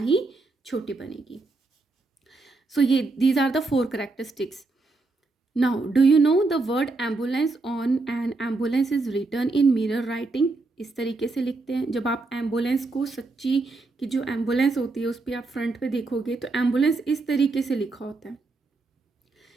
छोटी बनेगी. सो ये these are the 4 characteristics. Now do you know the word ambulance on an ambulance is return in mirror writing. इस तरीके से लिखते हैं. जब आप एम्बुलेंस को, सच्ची की जो एम्बुलेंस होती है उस पर आप फ्रंट पे देखोगे तो एम्बुलेंस इस तरीके से लिखा होता है.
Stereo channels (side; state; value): left; quieter; 3.5 dB